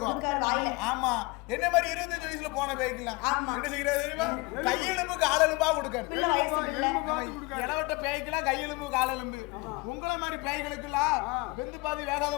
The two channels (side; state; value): right; quieter; 24.8 dB